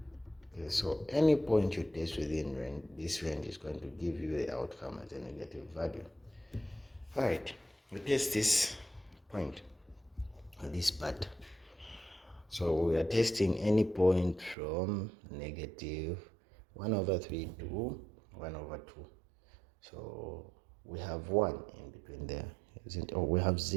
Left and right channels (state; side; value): drops out; left; at 14.6 s